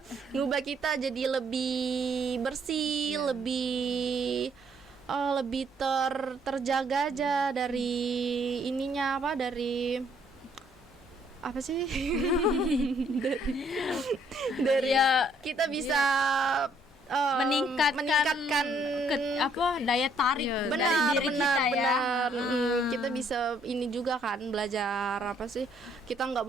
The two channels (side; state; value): both; normal; correlation 0.67